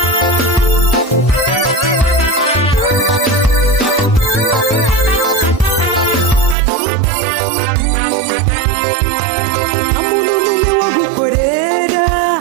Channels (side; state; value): left; drops out; at 6.6 s